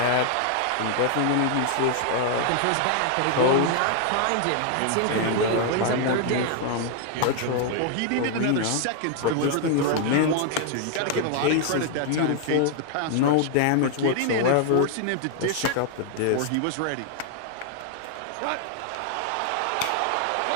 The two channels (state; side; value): different; both; correlation 0.00